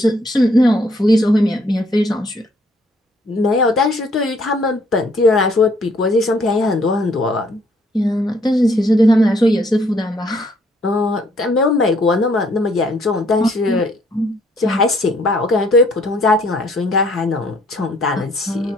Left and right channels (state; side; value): normal; both; correlation 0.65